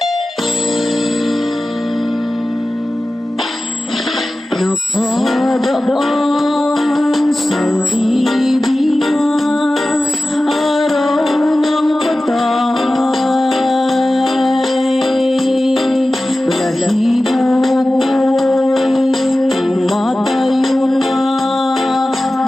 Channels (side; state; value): both; normal; correlation 0.96